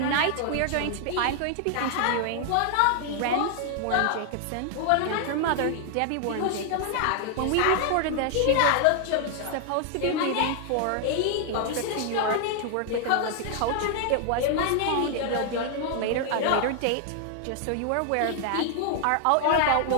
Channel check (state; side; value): different; both; correlation 0.00